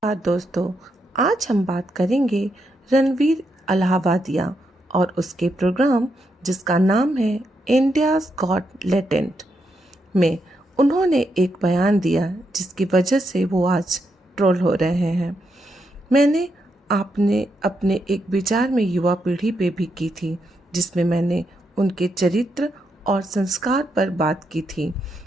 दोस्तों, आज हम बात करेंगे रणवीर अलाहाबादिया और उसके प्रोग्राम जिसका नाम है इंडियाज़ गॉट लेटेंट में उन्होंने एक बयान दिया जिसकी वजह से वो आज ट्रोल हो रहे हैं। मैंने आपने अपने एक विचार में युवा पीढ़ी पे भी की थी, जिसमें मैंने उनके चरित्र और संस्कार पर बात की थी,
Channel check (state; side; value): normal; both; correlation 0.81